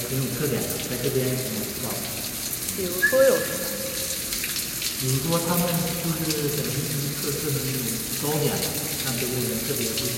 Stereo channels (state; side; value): identical; both; correlation 1.00